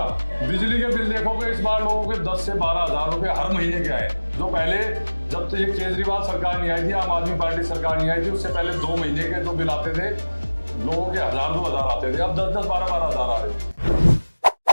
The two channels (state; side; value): inverted; both; correlation -1.00